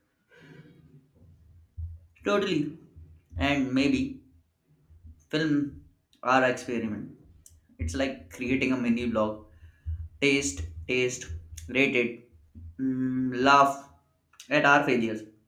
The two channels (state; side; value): identical; both; correlation 1.00